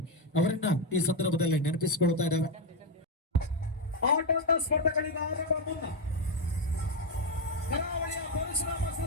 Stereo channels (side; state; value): both; normal; correlation 0.06